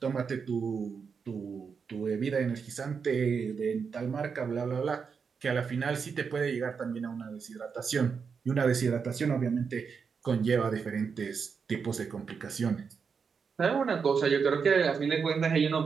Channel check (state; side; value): quieter; left; 5.9 dB